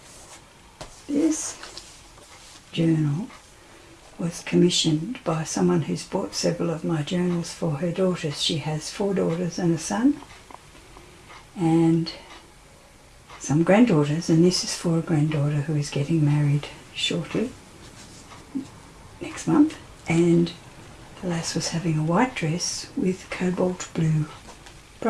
This journal was commissioned by someone who's bought several of my journals for her daughters. She has 4 daughters and a son and some granddaughters, and this is for a granddaughter who is getting married shortly, next month, and the lass was having a white dress with cobalt blue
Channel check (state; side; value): identical; both; correlation 1.00